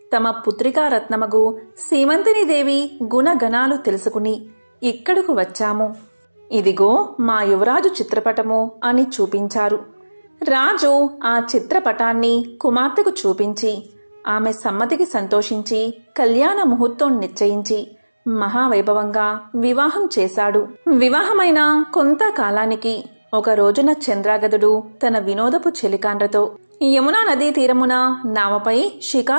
తమ పుత్రికా రత్నమగు సీమంతిని దేవి గుణగణాలు తెలుసుకుని ఇక్కడకు వచ్చాము. ఇదిగో మా యువరాజు చిత్రపటము అని చూపించారు. రాజు ఆ చిత్రపటాన్ని కుమార్తెకు చూపించి ఆమె సమ్మతికి సంతోషించి కళ్యాణ ముహూర్తం నిశ్చయించి మహావైభవంగా వివాహం చేశాడు. వివాహమైన కొంతకాలానికి ఒక రోజున చంద్రాగదుడు తన వినోదపు చెలికాండ్రతో యమునా నదీ తీరమున నావపై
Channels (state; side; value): inverted; both; correlation -1.00